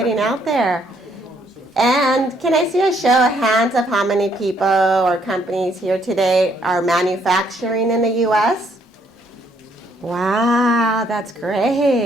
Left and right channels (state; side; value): normal; both; correlation 0.69